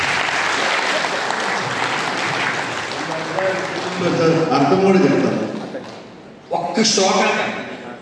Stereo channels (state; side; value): identical; both; correlation 1.00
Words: అర్థం కూడా చెప్తాను. ఒక్క శ్లోకం